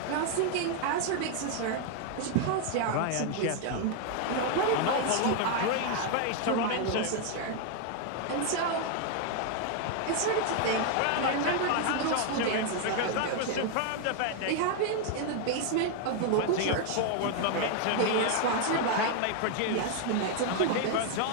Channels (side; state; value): both; different; correlation 0.00